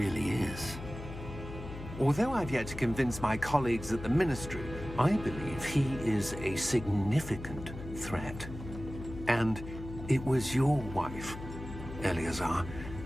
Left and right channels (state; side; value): noise; left; hum, 11 dB below the sound